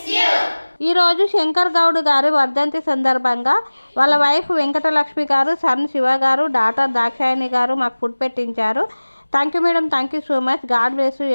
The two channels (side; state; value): both; inverted; correlation -1.00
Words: ఈరోజు శంకర్ గౌడ్ గారి వర్ధంతి సందర్భంగా వాళ్ళ వైఫ్ వెంకటలక్ష్మి గారు, సన్ శివ గారు, డాటర్ దాక్షాయణి గారు మాకు ఫుడ్ పెట్టించారు. Thank you madam, thank you so much. God bless you